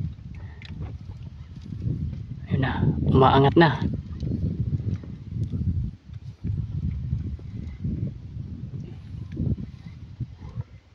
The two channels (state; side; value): identical; both; correlation 1.00